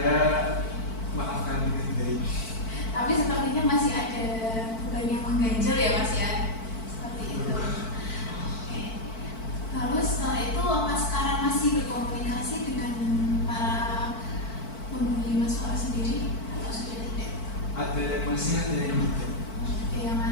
maafkan dengan baik. Tapi sepertinya masih ada beban yang mengganjal ya Mas ya, seperti itu. Oke. Lalu setelah itu apa sekarang masih berkomunikasi dengan para pembuli Mas Faras sendiri atau sudah tidak? Ada yang masih, ada yang tidak. Ada yang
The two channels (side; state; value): right; late; 4.5 ms